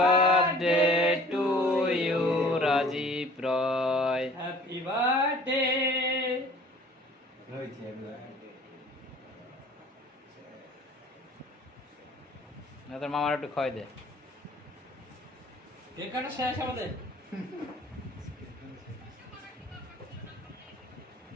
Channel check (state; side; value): normal; both; correlation 0.50